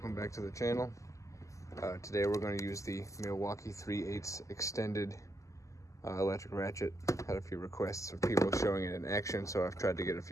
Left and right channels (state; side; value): late; right; 0.16 ms